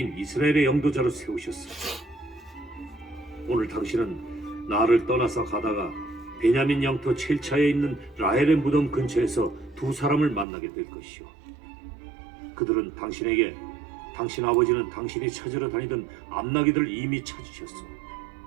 이스라엘의 영도자로 세우셨어. 오늘 당신은 나를 떠나서 가다가 베냐민 영토 첼차에 있는 라헬의 무덤 근처에서 두 사람을 만나게 될 것이오. 그들은 당신에게 당신 아버지는 당신이 찾으러 다니던 암나귀들을 이미 찾으셨어.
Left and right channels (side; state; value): left; drops out; at 10.5 s